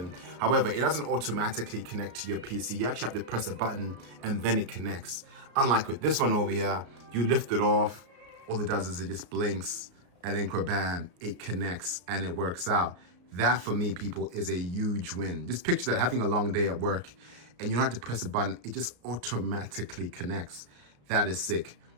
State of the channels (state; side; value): late; left; 34 ms